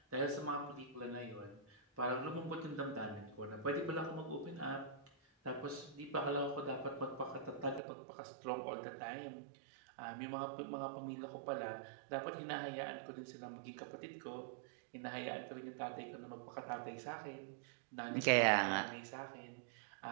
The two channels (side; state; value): left; drops out; at 7.8 s